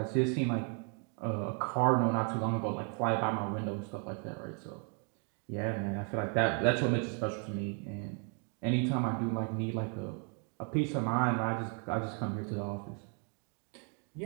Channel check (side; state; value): left; quieter; 39.8 dB